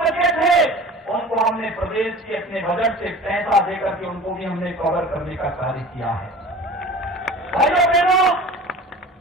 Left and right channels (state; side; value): normal; both; correlation 0.41